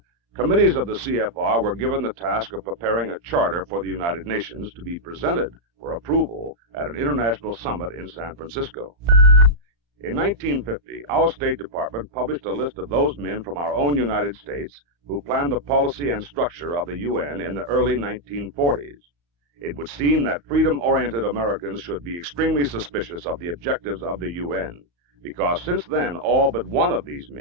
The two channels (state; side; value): late; left; 35 ms